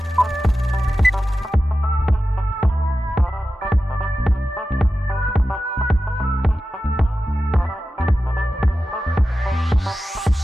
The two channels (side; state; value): both; normal; correlation 0.93